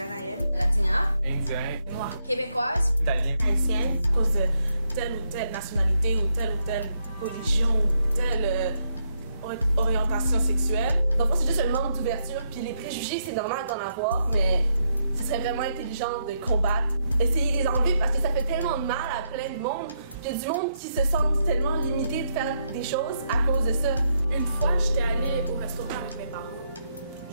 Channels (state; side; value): inverted; both; correlation -0.79